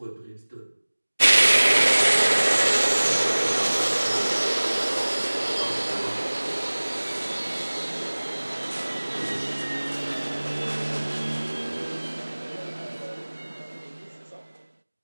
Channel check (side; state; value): both; inverted; correlation -1.00